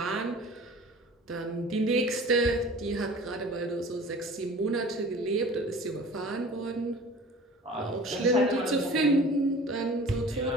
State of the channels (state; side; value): normal; both; correlation 0.43